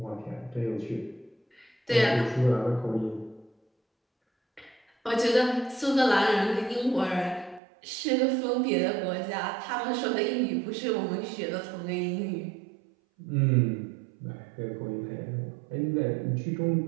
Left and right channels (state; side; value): drops out; left; at 7.6 s